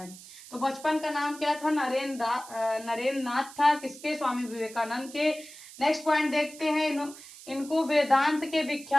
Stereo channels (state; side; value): noise; right; hiss, 17 dB below the sound